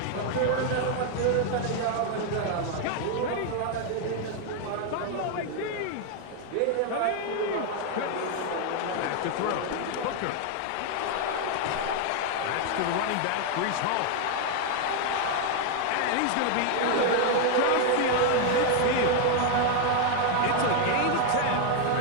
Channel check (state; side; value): different; both; correlation 0.00